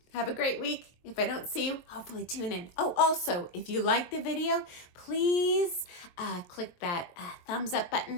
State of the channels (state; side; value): late; right; 22 ms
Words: Have a great week. If I don't see you, hopefully tune in. Oh, also, if you like the video, please click that thumbs up